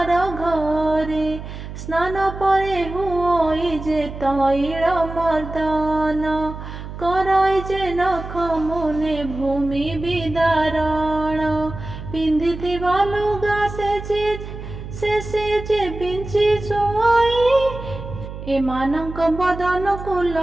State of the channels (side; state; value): right; noise; hum, 10 dB below the sound